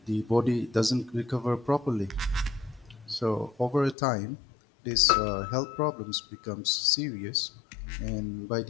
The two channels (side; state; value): right; drops out; at 4.0 s